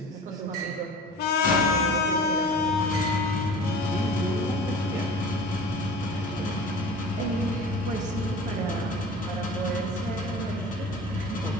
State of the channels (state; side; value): normal; both; correlation 0.39